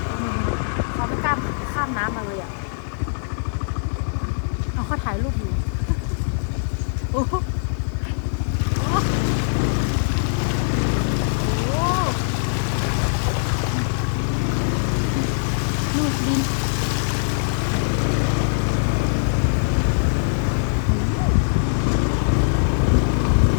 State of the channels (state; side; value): silent; right; digital silence